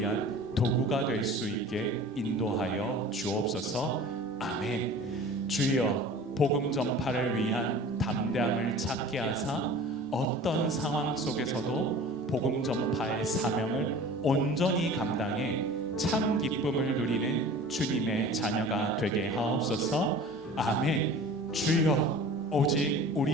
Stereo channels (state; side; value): normal; both; correlation 0.41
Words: 도구가 될 수 있게 인도하여 주옵소서. 아멘. 주여, 복음 전파를 위한 담대함을 찾게 하사 어떤 상황 속에서도 복음 전파의 사명을 온전히 감당해 참 기쁨을 누리는 주님의 자녀가 되게 하옵소서. 아멘. 주여, 오직